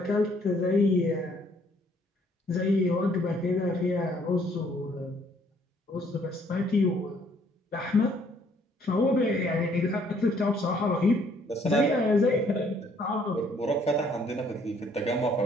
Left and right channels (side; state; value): both; normal; correlation 0.64